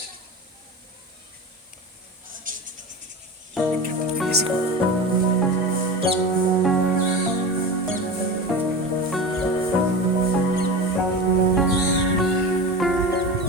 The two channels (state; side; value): normal; both; correlation 0.27